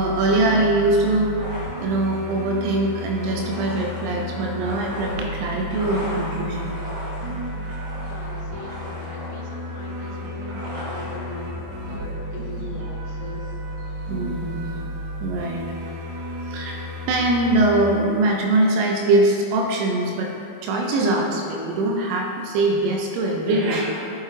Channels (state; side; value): late; left; 25 ms